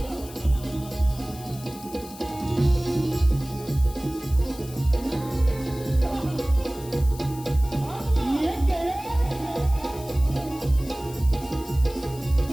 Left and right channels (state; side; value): noise; left; hiss, 17 dB below the sound